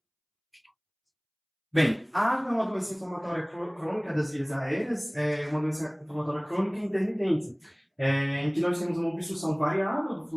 Bem, a asma é uma doença inflamatória crônica das vias aéreas, é uma doença inflamatória crônica intermitente, em que nós temos uma obstrução variável do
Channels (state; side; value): identical; both; correlation 1.00